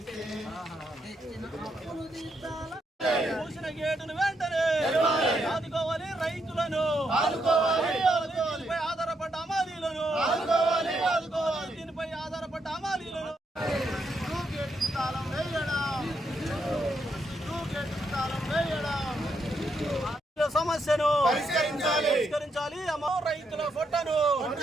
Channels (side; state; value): both; normal; correlation 0.79